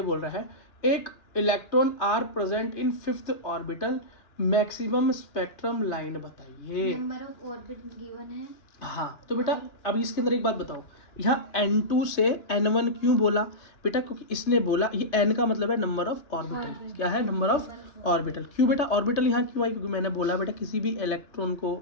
बोल रहा है एक electron are present in 5th orbital, maximum spectrum line बताइए। नंबर ऑफ ऑर्बिट गिवन है। हाँ तो बेटा अब इसके अंदर एक बात बताओ, यहाँ n2 से n1 क्यों बोला बेटा, क्योंकि इसने बोला ये n का मतलब है नंबर ऑफ ऑर्बिटल, क्या है, नंबर ऑफ ऑर्बिटल। क्यों बेटा ऑर्बिटल यहाँ क्यों आई, क्योंकि मैंने बोला बेटा किसी भी इलेक्ट्रॉन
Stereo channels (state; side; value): late; right; 3.3 ms